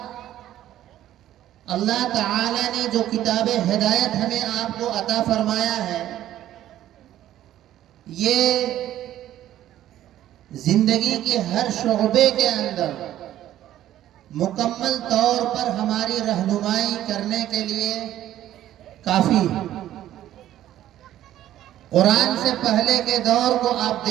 اللہ تعالی نے جو کتاب ہدایت ہمیں آپ کو عطا فرمایا ہے، یہ زندگی کے ہر شعبے کے اندر مکمل طور پر ہماری رہنمائی کرنے کے لیے کافی ہے. قرآن سے پہلے کے دور کو آپ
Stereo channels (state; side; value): quieter; left; 12.7 dB